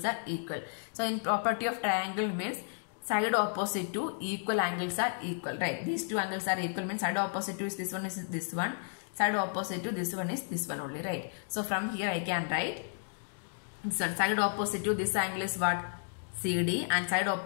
are equal. So in property of triangle means side opposite to equal angles are equal, right? These two angles are equal means side opposite to is this one, side opposite to this one is this one only, right? So from here I can write this one, side opposite to this angle is what? CD, and side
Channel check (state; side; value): silent; right; digital silence